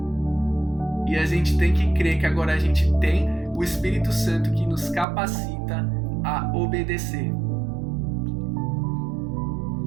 E a gente tem que crer que agora a gente tem o Espírito Santo que nos capacita a obedecer.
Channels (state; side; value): drops out; left; at 5.1 s